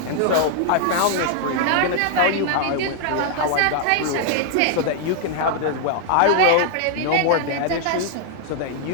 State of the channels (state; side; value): different; both; correlation 0.00